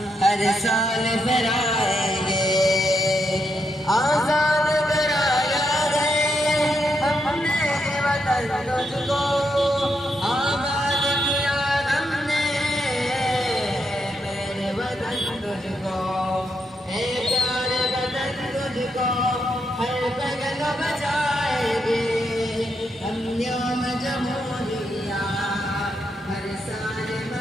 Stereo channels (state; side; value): normal; both; correlation 0.80